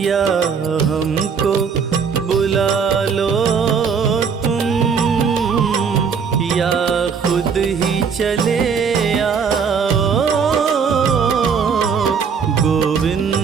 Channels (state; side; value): quieter; left; 6.2 dB